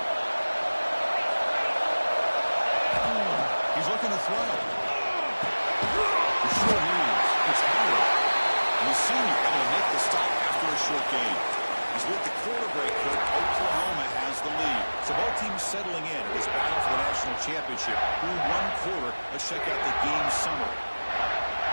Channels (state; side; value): inverted; both; correlation -1.00